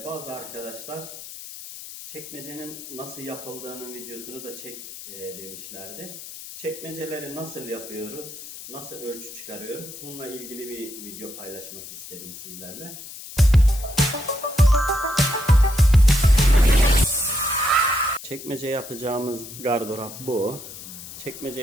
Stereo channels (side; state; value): left; noise; hiss, 13 dB below the sound